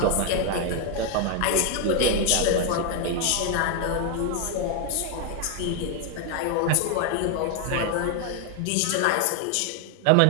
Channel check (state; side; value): different; both; correlation 0.01